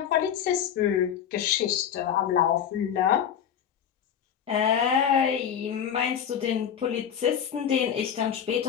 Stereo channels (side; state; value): right; quieter; 8.7 dB